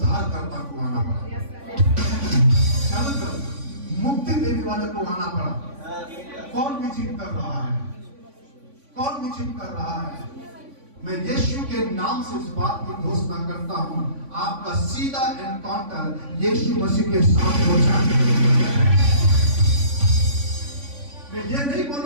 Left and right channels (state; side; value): late; left; 3.5 ms